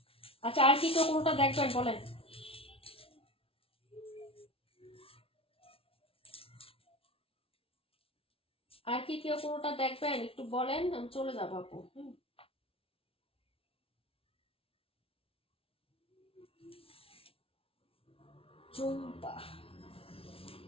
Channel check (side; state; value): right; late; 0.26 ms